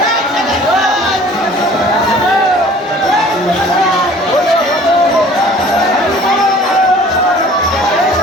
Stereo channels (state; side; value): normal; both; correlation 0.50